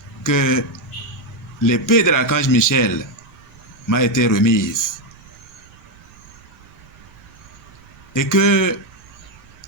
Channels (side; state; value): right; noise; rumble, 24 dB below the sound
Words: que l'épée de l'archange Michel m'a été remise et que